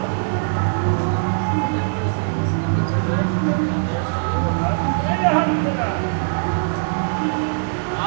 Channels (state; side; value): silent; left; digital silence